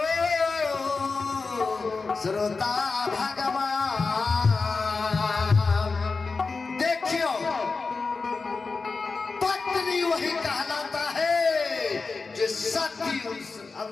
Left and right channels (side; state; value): right; quieter; 4.3 dB